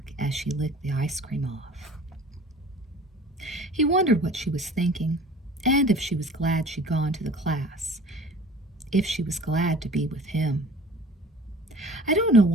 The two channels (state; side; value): normal; both; correlation 0.45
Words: as she licked the ice cream off. He wondered what she was thinking, and if she was glad she'd gone to the class, if she was glad to be with him. I don't know